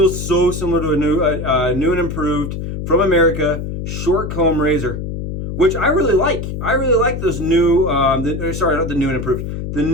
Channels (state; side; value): noise; left; hum, 6 dB below the sound